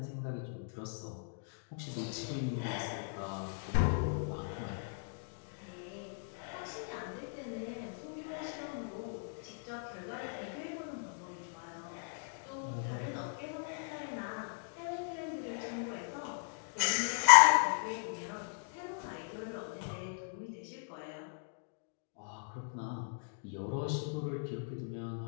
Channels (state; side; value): silent; right; digital silence